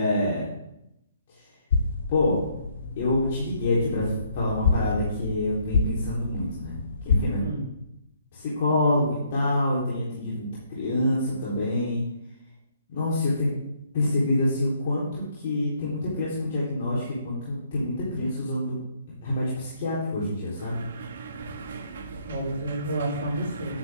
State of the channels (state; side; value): inverted; both; correlation -0.69